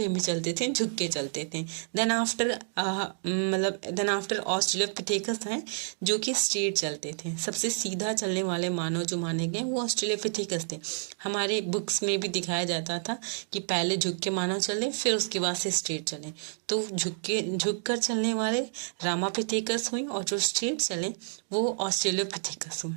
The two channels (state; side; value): silent; left; digital silence